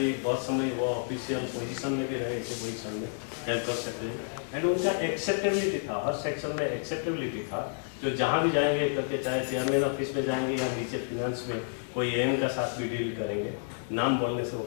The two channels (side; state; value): right; silent; digital silence